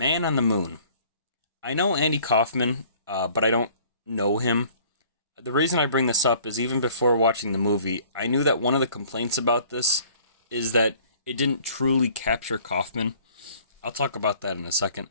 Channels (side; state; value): both; inverted; correlation -0.54